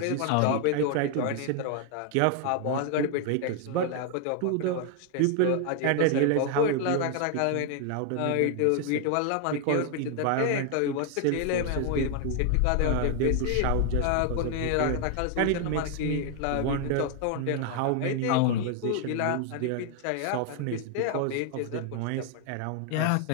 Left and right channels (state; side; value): different; both; correlation 0.00